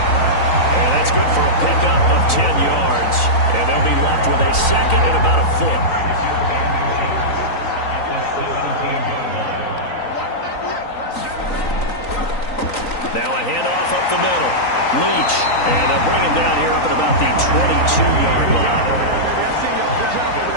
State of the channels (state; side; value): late; right; 3.9 ms